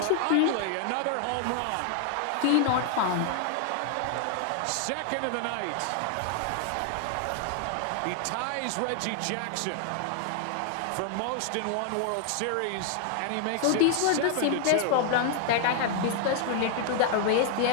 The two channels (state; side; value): different; both; correlation 0.00